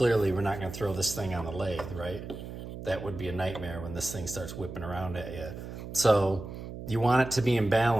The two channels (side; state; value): right; noise; hum, 10 dB below the sound